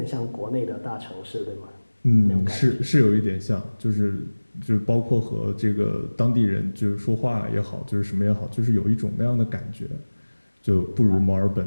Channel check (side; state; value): both; inverted; correlation -1.00